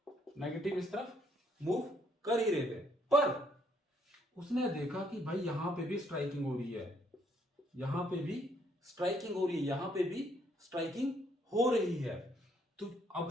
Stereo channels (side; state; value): both; normal; correlation 0.69